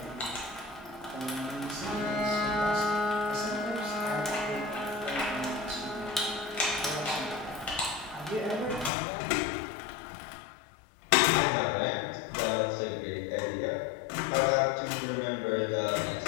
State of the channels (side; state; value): right; drops out; at 8.9 s